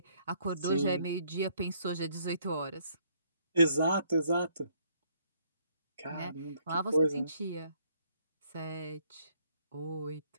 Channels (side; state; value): both; inverted; correlation -0.67